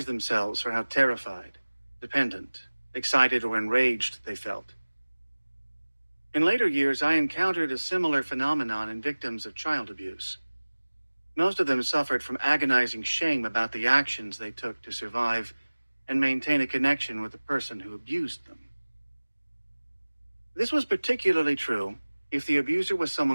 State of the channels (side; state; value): both; inverted; correlation -1.00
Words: themselves for how terrified, dependent, excited, or enraged they felt. In later years, I encountered a similar phenomenon in victims of child abuse. Most of them suffered from agonizing shame about the actions they took to survive and maintain a connection with the person who abused them. This was particularly true if the abuser was